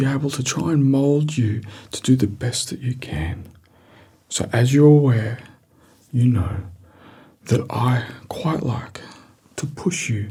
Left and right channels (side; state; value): both; identical; correlation 1.00